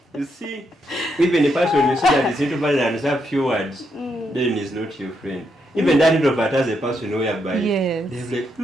You see, even a person you see that is introvert and has a few words, then he's not your friend. Even that introvert has a person whereby they're like,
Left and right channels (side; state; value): both; normal; correlation 0.79